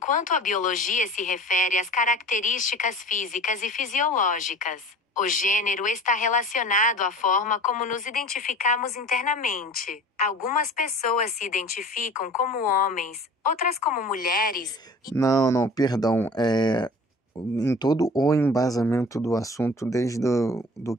a biologia se refere às características físicas e fisiológicas. O gênero está relacionado à forma como nos identificamos internamente. Algumas pessoas se identificam como homens, outras como mulheres. Não, perdão. Em todo o embasamento do assunto, desde do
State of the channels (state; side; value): normal; both; correlation 0.42